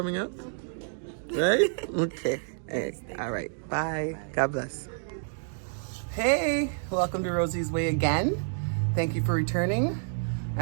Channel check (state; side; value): silent; left; digital silence